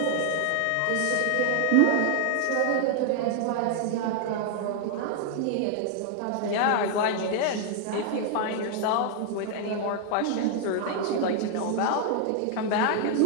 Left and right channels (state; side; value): different; both; correlation 0.00